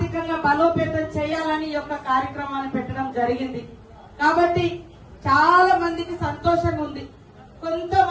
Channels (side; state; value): both; identical; correlation 1.00